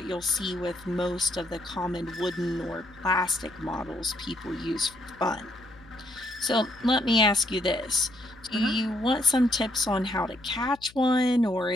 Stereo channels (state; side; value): noise; left; hum, 25 dB below the sound